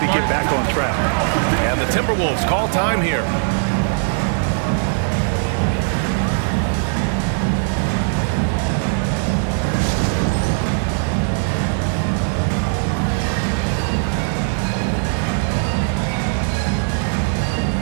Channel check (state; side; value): silent; left; digital silence